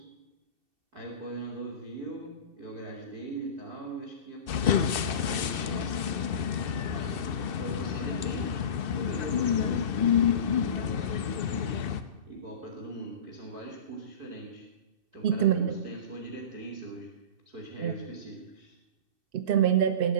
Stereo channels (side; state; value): left; late; 2.6 ms